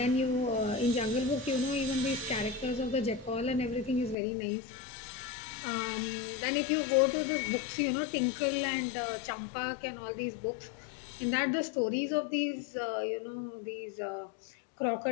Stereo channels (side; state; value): right; drops out; at 4.2 s